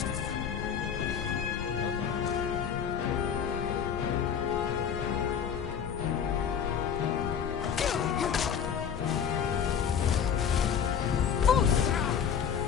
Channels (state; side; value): quieter; right; 7.8 dB